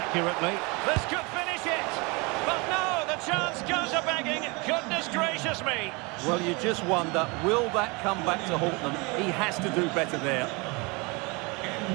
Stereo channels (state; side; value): quieter; left; 27.8 dB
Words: This could finish it! But no, the chance goes a-begging. Goodness gracious me! Well, you just wonder, will that come back to haunt them? He has to do better there.